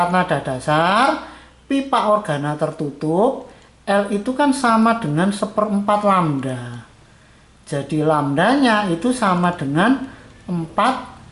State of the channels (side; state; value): both; identical; correlation 1.00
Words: nada dasar pipa organa tertutup, L itu kan sama dengan 1/4 lambda. Jadi lambdanya itu sama dengan 4